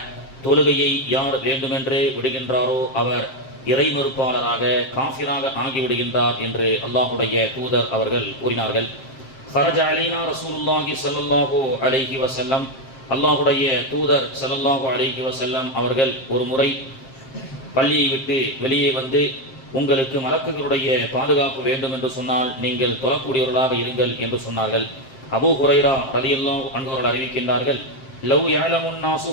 தொழுகையை யார் வேண்டுமென்றே விடுகின்றாரோ அவர் இறை மறுப்பாளராக காஃபிராக ஆகிவிடுகின்றார் என்று அல்லாஹுடைய தூதர் அவர்கள் கூறினார்கள். ஃபரஜ அலைனா ரசூலுல்லாஹி ஸல்லல்லாஹு அலைஹி வஸல்லம், அல்லாஹுடைய தூதர் ஸல்லல்லாஹு அலைஹி வஸல்லம் அவர்கள் ஒரு முறை பள்ளியை விட்டு வெளியே வந்து, உங்களுக்கு மலக்குகளுடைய பாதுகாப்பு வேண்டும் என்று சொன்னால் நீங்கள் தொழக்கூடியவர்களாக இருங்கள் என்று சொன்னார்கள். அபூ ஹுரைரா ரலியல்லாஹு அன்ஹு அவர்கள் அறிவிக்கின்றார்கள், லவ் யஅலமுன் நாஸு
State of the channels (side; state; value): right; late; 7.6 ms